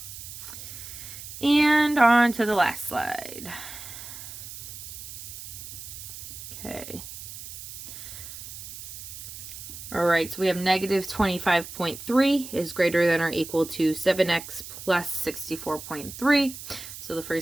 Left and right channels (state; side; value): noise; right; hiss, 12 dB below the sound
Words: And on to the last slide. Okay. All right, so we have negative 25.3 is greater than or equal to 7x plus 64.3. So the